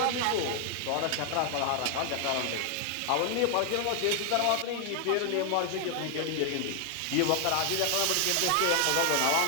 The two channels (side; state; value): both; different; correlation 0.00